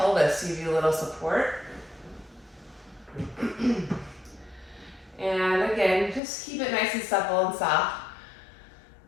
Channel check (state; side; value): drops out; right; at 6.2 s